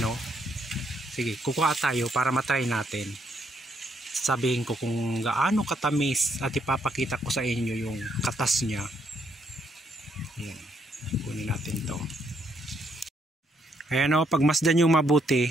o. Sige, kukuha tayo para matry natin. Sabihin ko kung gaano katamis at ipapakita ko sa inyo yung katas niya. Ayan, kunin natin to. Ayan o, pagmasdan nyo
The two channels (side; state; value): both; normal; correlation 0.73